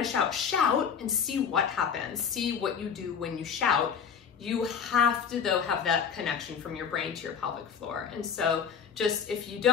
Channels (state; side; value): quieter; right; 7.0 dB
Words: to shout and see what happens. See what you do when you shout. You have to, though, have that connection from your brain to your pelvic floor. And so just if you